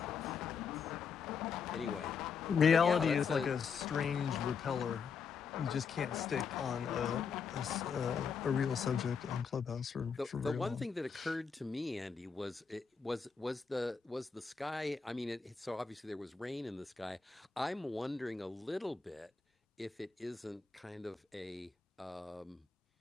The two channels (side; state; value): right; quieter; 5.8 dB